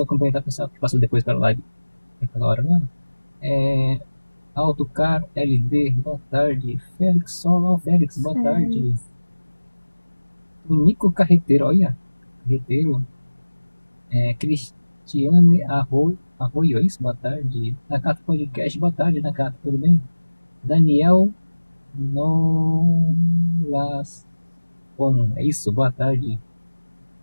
complementar o pessoal que passou depois pela live naquela hora, né? É, Autocar LD, boa tarde. Félix Solon, Félix, boa Sério. tarde. Nico Carreteiro, olha, Carreteiro. Cristiane Arroio, é isso? Boa tarde. Nakata Podcast, boa tarde, Nakata, tudo bem? Daniel Nolas, bom, é isso, boa tarde.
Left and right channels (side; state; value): both; inverted; correlation -1.00